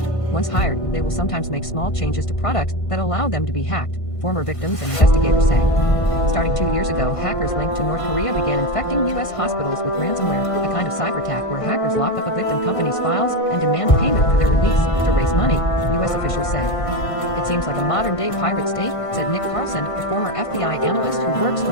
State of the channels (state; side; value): late; right; 1.5 ms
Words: Once hired, they will sometimes make small changes to products that allow them to be hacked, former victims and investigators say. Starting 2 years ago, hackers linked to North Korea began infecting U.S. hospitals with ransomware, a kind of cyber attack where hackers lock up a victim company's files and demand payment for their release to raise money, U.S. officials say. It seems like a modern-day pirate state, said Nick Carlson, a former FBI analyst who works for